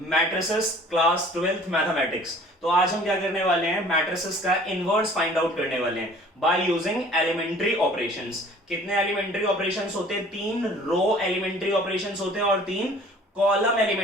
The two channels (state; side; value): normal; both; correlation 0.50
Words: matrices, class 12th mathematics. तो आज हम क्या करने वाले हैं, मैट्रिसेस का इनवर्स फाइंड आउट करने वाले हैं बाय यूजिंग एलिमेंट्री ऑपरेशंस। कितने एलिमेंट्री ऑपरेशंस होते हैं? 3 रो एलिमेंट्री ऑपरेशंस होते हैं और 3 कॉलम